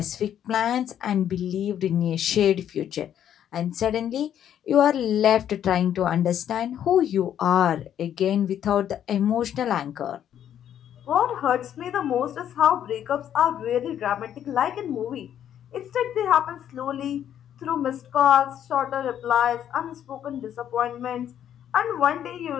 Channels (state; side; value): quieter; right; 10.1 dB